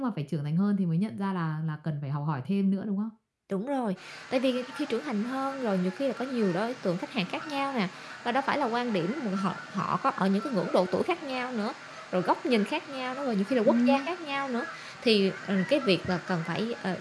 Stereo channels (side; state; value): both; identical; correlation 1.00